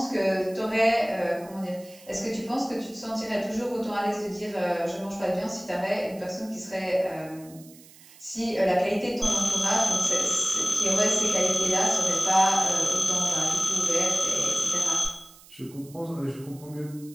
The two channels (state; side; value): noise; right; hiss, 23 dB below the sound